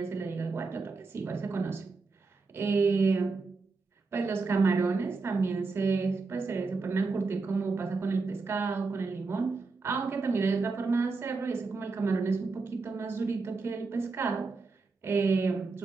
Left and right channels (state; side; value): quieter; left; 4.1 dB